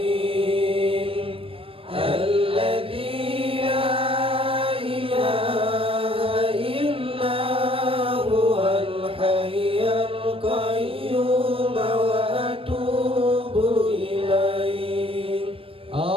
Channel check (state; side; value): late; left; 0.27 ms